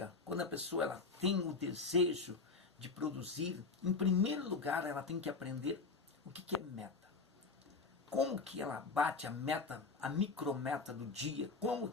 quando a pessoa ela tem o desejo de produzir, em primeiro lugar ela tem que aprender o que é meta. Como que ela bate a meta, a micrometa do dia, como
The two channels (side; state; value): right; quieter; 4.3 dB